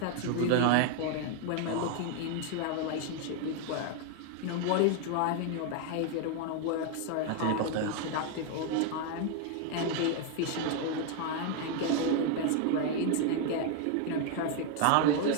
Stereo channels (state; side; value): different; both; correlation 0.01